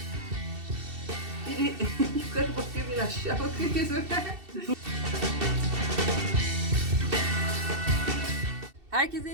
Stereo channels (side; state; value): left; late; 2.7 ms